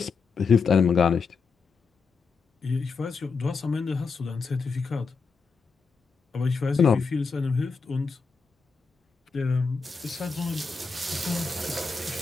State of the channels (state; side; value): quieter; right; 4.8 dB